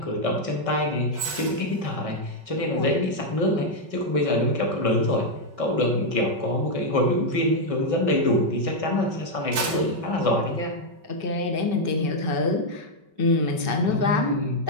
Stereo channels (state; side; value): late; left; 5.3 ms